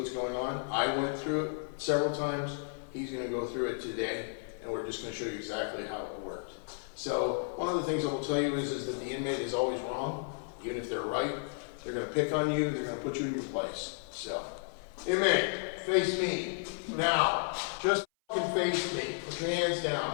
going on. I went through it several times. He's going to go through it today, and we're just going to show you exactly how it worked. So one of the things I will tell you is that the inmate is always wrong. Even if they're right, they're going to pick on you. They're going to put you in your place. So, inmate, face me. Now, just fucking face me. Put your hands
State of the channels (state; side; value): silent; right; 56 dB below the other